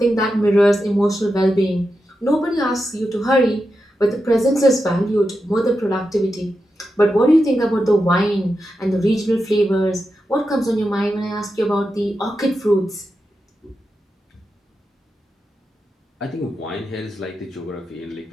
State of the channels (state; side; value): normal; both; correlation 0.89